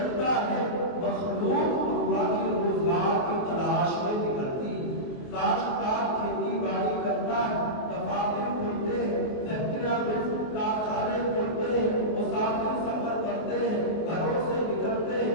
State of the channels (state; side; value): late; right; 24 ms